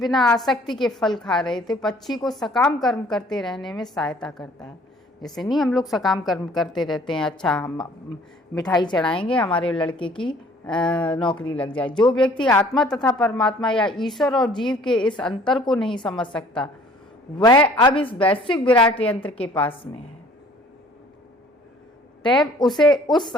आसक्ति के फल खा रहे थे। पक्षी को सकाम कर्म करते रहने में सहायता करता है। जैसे नहीं हम लोग सकाम कर्म करते रहते हैं, अच्छा हम मिठाई चढ़ाएंगे हमारे लड़के की नौकरी लग जाए। जो व्यक्ति आत्मा तथा परमात्मा या ईश्वर और जीव के इस अंतर को नहीं समझ सकता वह अब इस वैश्विक विराट यंत्र के पास में है। तब उसे उस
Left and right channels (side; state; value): both; normal; correlation 0.54